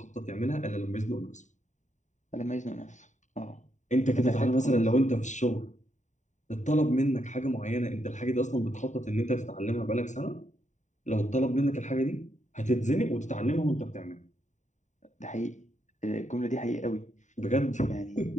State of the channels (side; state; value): right; late; 0.35 ms